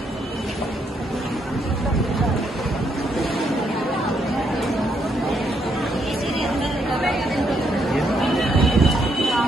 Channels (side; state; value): both; normal; correlation 0.75